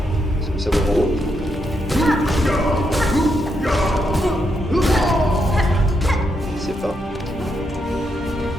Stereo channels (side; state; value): both; normal; correlation 0.80